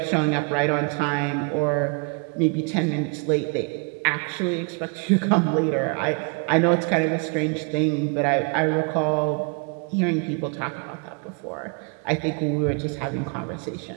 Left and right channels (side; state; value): left; quieter; 35.9 dB